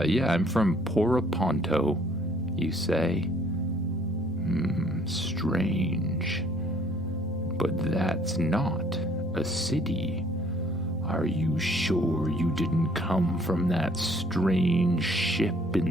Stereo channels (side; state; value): both; normal; correlation 0.59